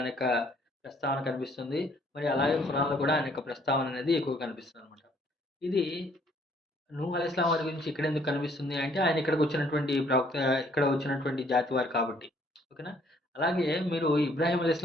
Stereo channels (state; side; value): normal; both; correlation 0.63